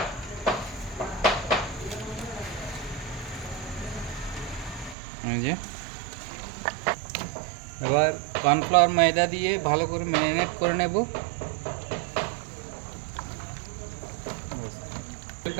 এবার কর্নফ্লাওয়ার ময়দা দিয়ে ভালো করে ম্যারিনেট করে নেব।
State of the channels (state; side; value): drops out; left; at 5.0 s